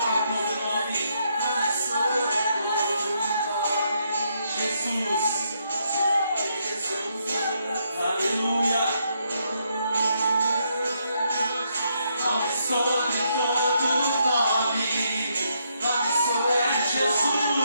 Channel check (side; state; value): both; inverted; correlation -0.76